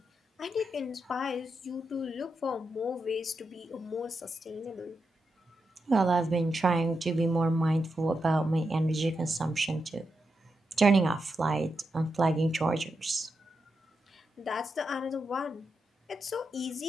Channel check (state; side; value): normal; both; correlation 0.86